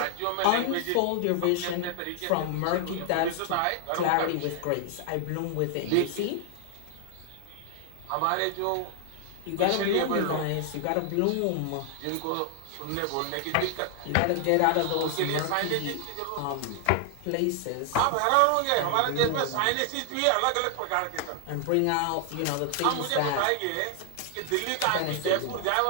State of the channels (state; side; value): different; both; correlation 0.00